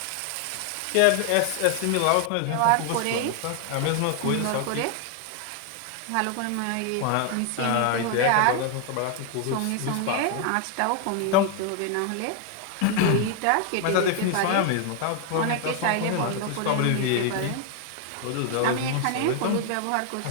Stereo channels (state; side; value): different; both; correlation 0.00